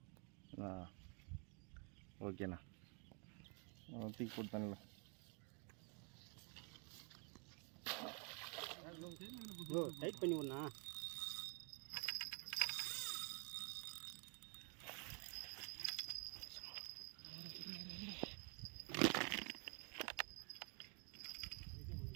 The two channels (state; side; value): quieter; left; 35.9 dB